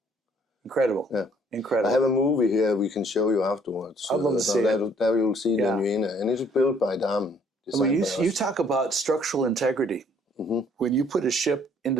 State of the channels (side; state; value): both; normal; correlation 0.62